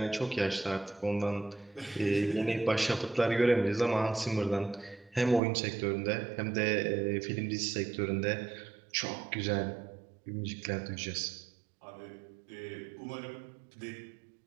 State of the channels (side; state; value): left; drops out; at 5.4 s